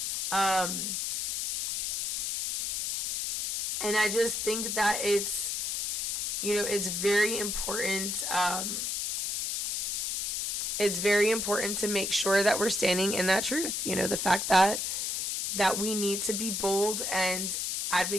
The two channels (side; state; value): left; noise; hiss, 1 dB below the sound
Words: And I just think that it's, you know, it's very important. It's very important to make sure that we're standing in that truth. You know, the fact that we need to be bold and